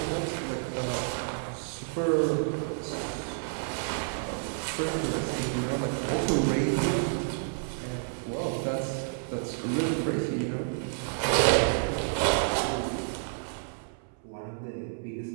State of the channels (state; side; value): silent; left; 58 dB below the other